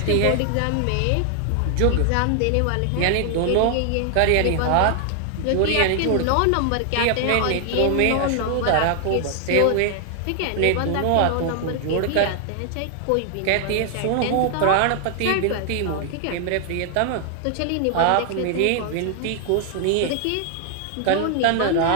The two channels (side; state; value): both; different; correlation 0.00